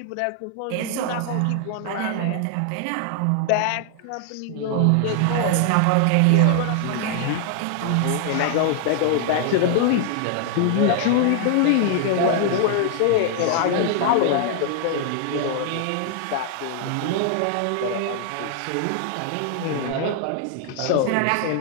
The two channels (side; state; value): both; different; correlation 0.00